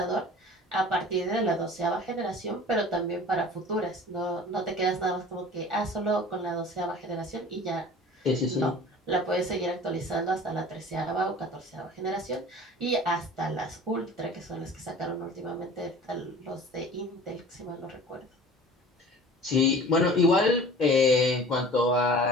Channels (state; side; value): normal; both; correlation 0.43